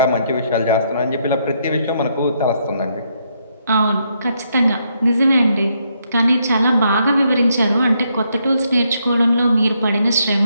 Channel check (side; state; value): both; inverted; correlation -0.75